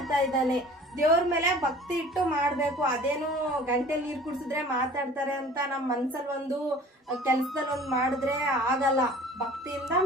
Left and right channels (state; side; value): normal; both; correlation 0.46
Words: ಇದ್ದಾನೆ. ದೇವ್ರ ಮೇಲೆ ಭಕ್ತಿ ಇಟ್ಟು ಮಾಡಬೇಕು. ಅದೇನು ಗಂಟೆಲಿ ನೀರು ಕುಡಿಸಿದ್ರೆ ಮಾತಾಡ್ತಾರೆ ಅಂತ ನಮ್ಮ ಮನ್ಸಲ್ಲಿ ಒಂದು, ಕೆಲಸದಲ್ಲಿ ಒಂದು ಮಾಡಿದ್ರೆ ಆಗಲ್ಲ. ಭಕ್ತಿಯಿಂದ